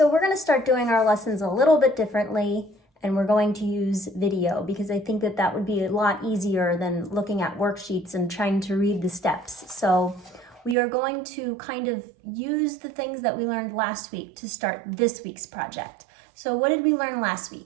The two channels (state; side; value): drops out; left; at 10.8 s